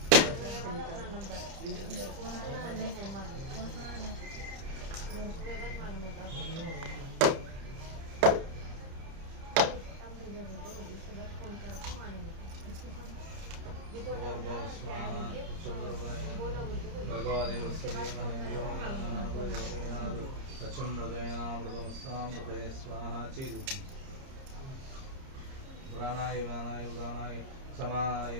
प्राणाय वाणाय उदानाय समानाय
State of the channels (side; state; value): left; late; 30 ms